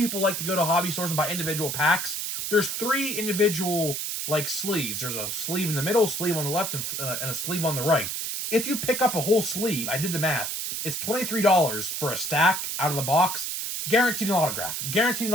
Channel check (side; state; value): right; noise; hiss, 3 dB below the sound